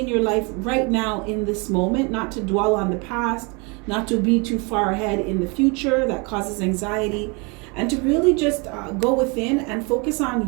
your life right now in this moment, not to dwell on the past, not to be too far ahead in the future. That causes anxiety. And to really just go within and focus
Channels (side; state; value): left; quieter; 30.7 dB